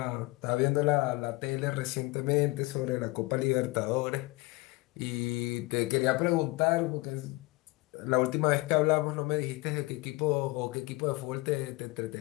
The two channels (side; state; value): right; quieter; 23.1 dB